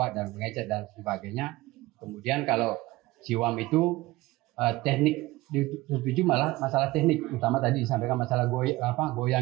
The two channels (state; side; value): quieter; left; 19.4 dB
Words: dan pengecet dan sebagainya. Kemudian kalau Ciwam itu teknik dituju malah masalah teknik, utama tadi disampaikan masalah